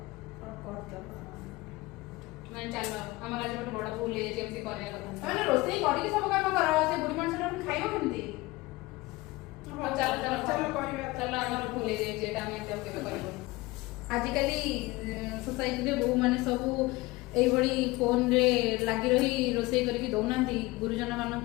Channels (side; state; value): right; quieter; 21.1 dB